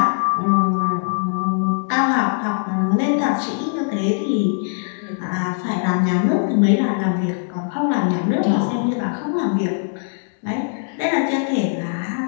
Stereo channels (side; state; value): right; silent; digital silence